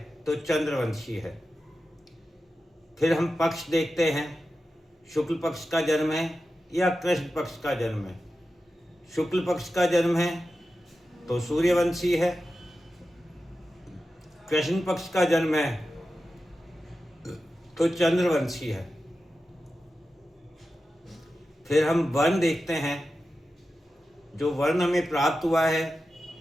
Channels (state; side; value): normal; both; correlation 0.92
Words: तो चंद्रवंशी है। फिर हम पक्ष देखते हैं, शुक्ल पक्ष का जन्म है या कृष्ण पक्ष का जन्म है। शुक्ल पक्ष का जन्म है तो सूर्यवंशी है, कृष्ण पक्ष का जन्म है तो चंद्रवंशी है। फिर हम वर्ण देखते हैं, जो वर्ण हमें प्राप्त हुआ है